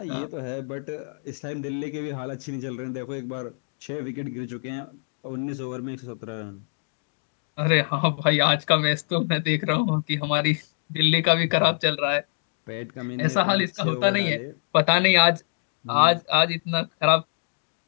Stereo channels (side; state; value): right; silent; digital silence